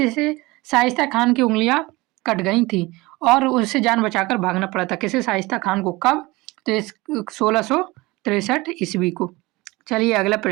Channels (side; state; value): left; quieter; 21.8 dB